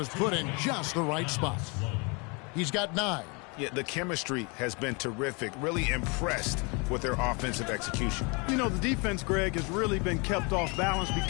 put in just the right spot. He's got 9. Yeah, the chemistry has been terrific. Really impressed with their offensive execution. You know, the defense, Greg, has really been kept off balance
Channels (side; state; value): right; quieter; 31.1 dB